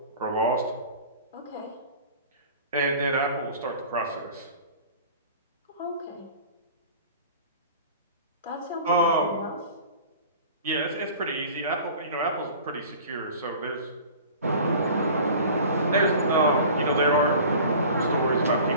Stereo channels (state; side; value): inverted; both; correlation -0.42